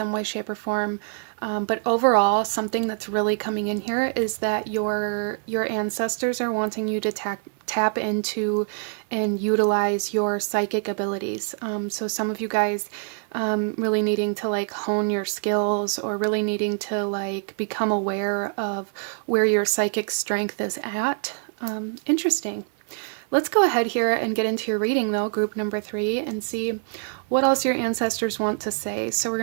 way, shape, or form. But overall, something that's really coming in here is that your ancestors are wanting you to tap into and utilize your psychic abilities. So some of you guys really needing to like hone your skills, or really needing to like become aware of where your psychic strength is at. Interesting. Let's go ahead here and get into your reading though, group number 3, and see what else your ancestors want to say. So we're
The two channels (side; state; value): left; silent; 62 dB below the other